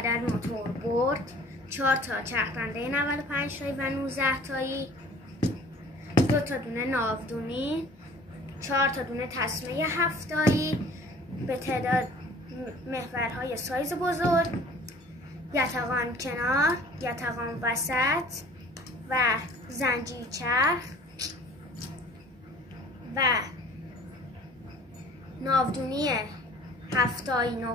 موتور برد، 4 تا چرخنده 95 تایی و 19 تایی، 2 تا دونه ناودونی، 4 تا دونه تسمه 7 تایی به تعداد محورهای سایز بزرگ، یتقان کنار، یتقان وسط و زنجیر چرخ و ناودونی 7 تایی، 9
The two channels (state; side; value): normal; both; correlation 0.49